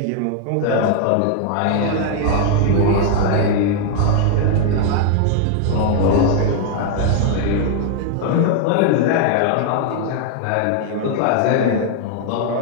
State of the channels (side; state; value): both; different; correlation -0.01